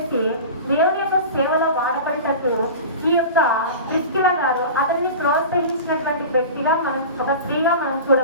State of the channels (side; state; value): both; inverted; correlation -0.33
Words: దేవుని యొక్క సేవలో వాడబడేటట్టు ఈ యొక్క ప్రిస్కిల గారు అతన్ని ప్రోత్సహించినటువంటి వ్యక్తిగా ఒక స్త్రీగా మనం